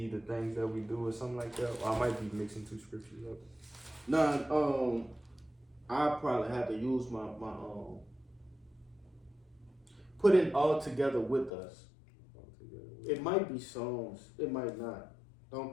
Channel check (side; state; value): right; drops out; at 11.5 s